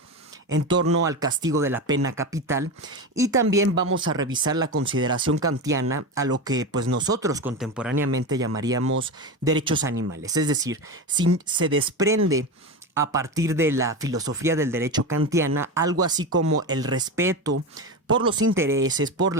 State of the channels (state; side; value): normal; both; correlation 0.20